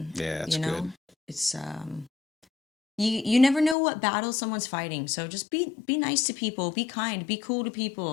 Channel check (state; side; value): drops out; right; at 3.8 s